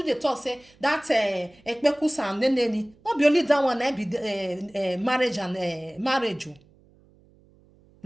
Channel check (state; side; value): noise; right; hum, 30 dB below the sound